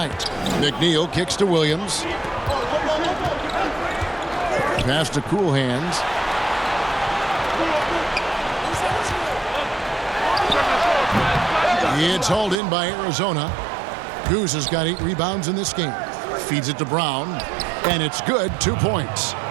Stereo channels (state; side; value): drops out; left; at 12.6 s